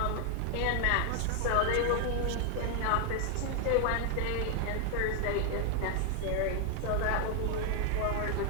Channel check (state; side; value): different; both; correlation 0.00